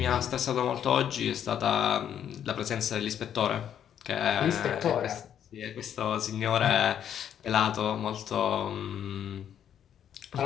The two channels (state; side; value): quieter; right; 9.5 dB